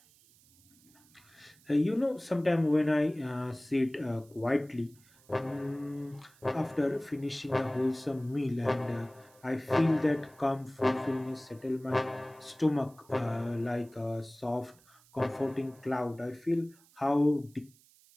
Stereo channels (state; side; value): noise; right; hiss, 28 dB below the sound